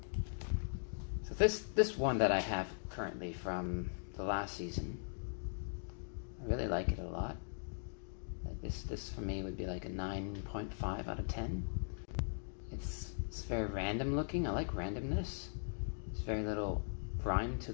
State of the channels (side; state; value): right; silent; digital silence